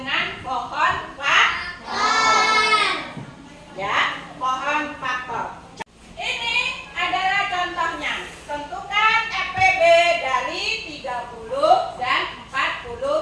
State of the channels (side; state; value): both; identical; correlation 1.00